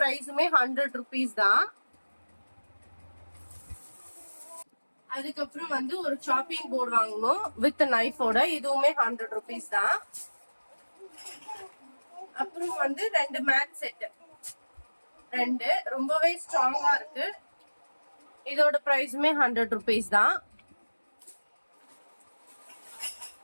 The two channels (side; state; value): both; inverted; correlation -1.00